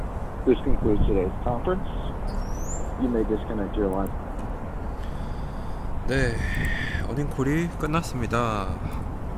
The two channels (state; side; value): identical; both; correlation 1.00